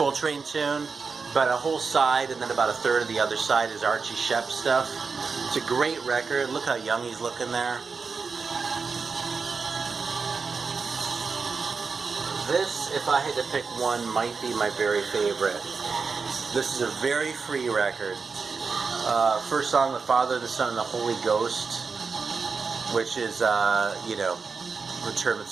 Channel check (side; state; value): left; quieter; 4.9 dB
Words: tune, but a whole side and then about a third of the other side is Archie Shepp stuff. It's a great record. Look how young he's looking there. This, if I had to pick one, might be my very favorite. This is a very free record. First song, The Father, the Son, and the Holy Ghost, which is, you know, the term